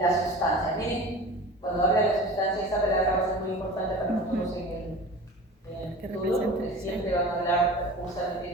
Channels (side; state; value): both; normal; correlation 0.37